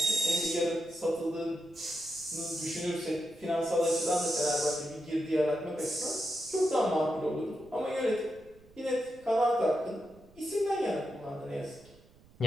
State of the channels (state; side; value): noise; right; rumble, 26 dB below the sound